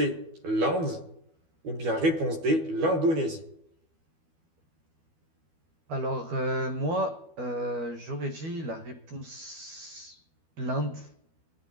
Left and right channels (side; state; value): left; late; 12 ms